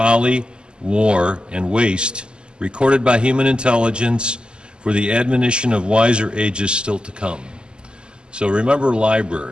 war, and waste, recorded by human intelligence for the admonition of wiser ages still to come. So remember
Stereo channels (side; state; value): left; late; 0.049 ms